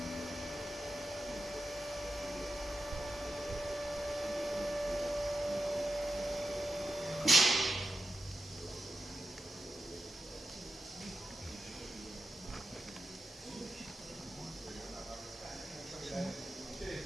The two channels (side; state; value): both; normal; correlation 0.90